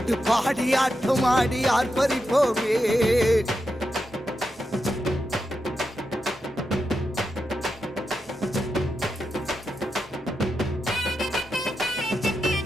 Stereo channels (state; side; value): normal; both; correlation 0.87